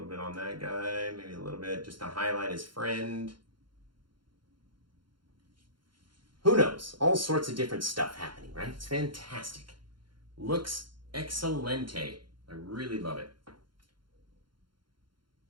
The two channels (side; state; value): left; late; 0.72 ms